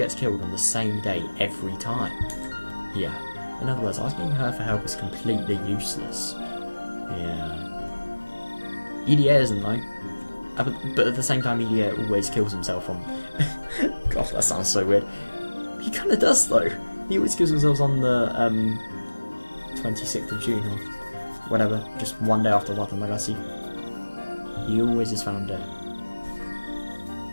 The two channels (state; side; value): inverted; both; correlation -1.00